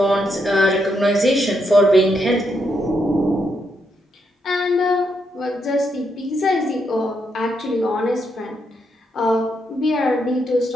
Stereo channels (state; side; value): normal; both; correlation 0.79